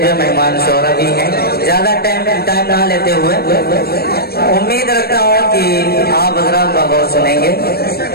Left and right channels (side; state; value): right; late; 0.46 ms